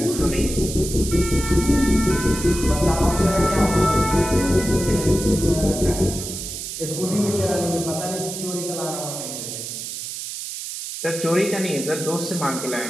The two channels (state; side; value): noise; right; hiss, 7 dB below the sound